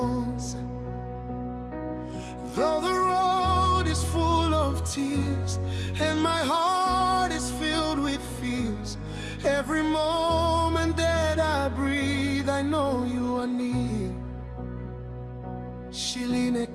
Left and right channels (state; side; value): identical; both; correlation 1.00